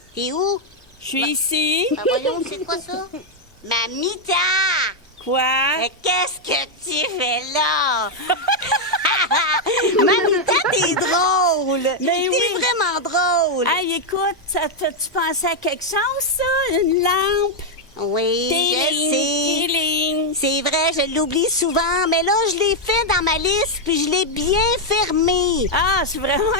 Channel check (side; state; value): both; normal; correlation 0.00